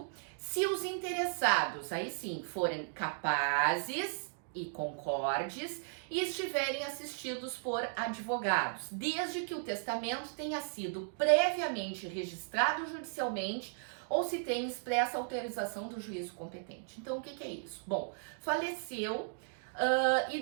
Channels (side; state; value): left; silent; digital silence